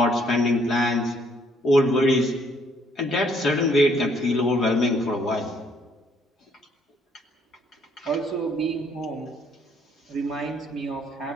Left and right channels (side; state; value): both; normal; correlation 0.66